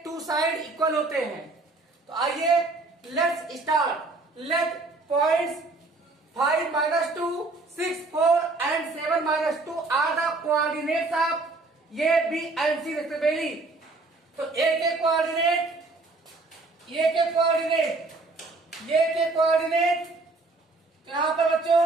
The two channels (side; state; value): left; quieter; 3.4 dB